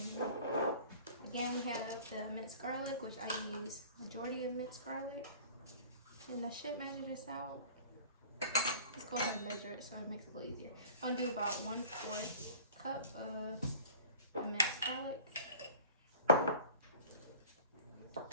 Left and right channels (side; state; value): both; inverted; correlation -0.43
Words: Again, we have the minced garlic, which I use majority of minced garlic. And I should measure this out. Let's go ahead and measure it so it makes it a little easier. I'm gonna do about 1/4 cup of the minced garlic.